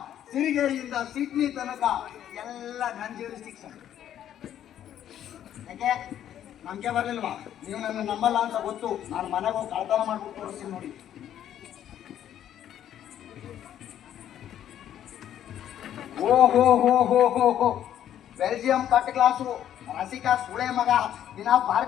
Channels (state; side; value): quieter; right; 10.7 dB